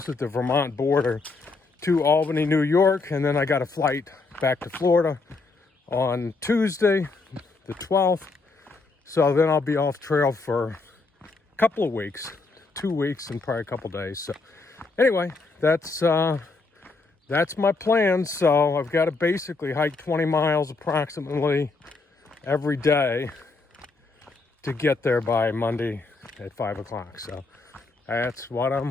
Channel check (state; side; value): quieter; right; 3.8 dB